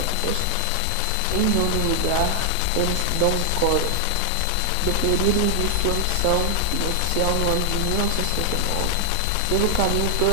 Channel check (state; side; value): different; both; correlation 0.00